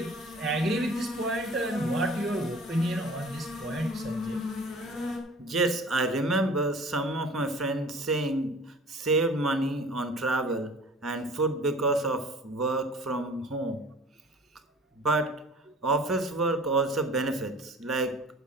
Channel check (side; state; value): both; normal; correlation 0.46